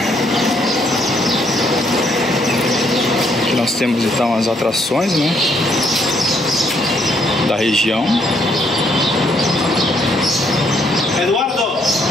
Aqui nós temos então as atrações, né, da região. Eduardo,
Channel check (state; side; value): normal; both; correlation 0.70